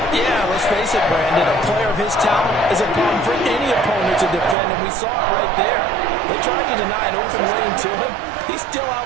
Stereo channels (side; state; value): left; drops out; at 4.5 s